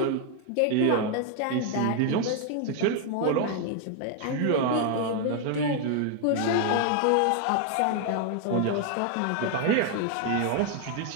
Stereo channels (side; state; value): both; different; correlation 0.00